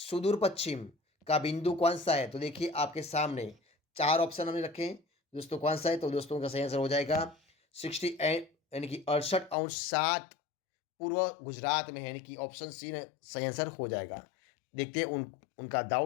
पश्चिम का बिंदु कौन सा है? तो देखिए, आपके सामने चार ऑप्शन हमने रखे हैं दोस्तों। कौन सा है? तो दोस्तों, का सही आंसर हो जाएगा 68, यानी कि 68 अंश 7 पूर्व गुजरात में है, यानी कि ऑप्शन सी सही आंसर हो जाएगा। देखते हैं उनका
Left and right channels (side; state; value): right; drops out; at 9.6 s